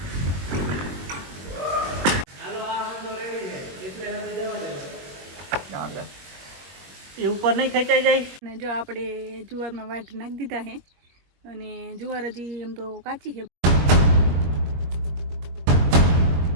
એ ઉપર નહીં ખેંચાઈ જાય. અને જો આપણે જુવારમાં વાટ નાખી દીધા છે અને જુવાર હજી એમ તો કાચી છે.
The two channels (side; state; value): left; late; 22 ms